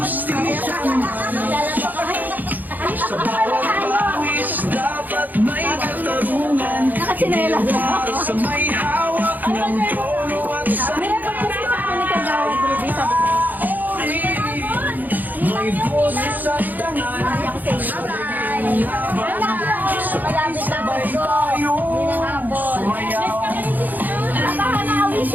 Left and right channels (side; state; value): left; late; 0.084 ms